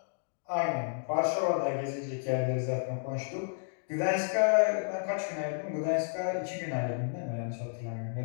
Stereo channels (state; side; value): silent; right; digital silence